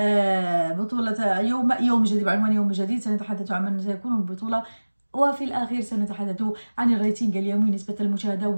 بطولة يوم جديد، بعنوان يوم جديد. سنتحدث عن من سيكون البطولة، وفي الأخير سنتحدث عن الريتنج اليومي، نسبة المشاهدة،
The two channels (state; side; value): inverted; both; correlation -1.00